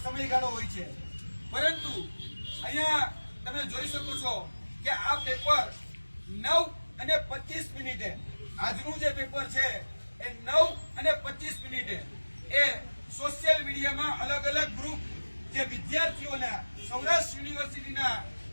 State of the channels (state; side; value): inverted; both; correlation -1.00